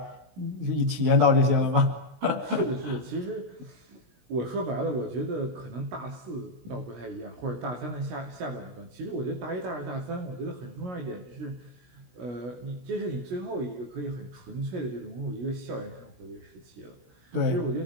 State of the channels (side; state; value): left; late; 16 ms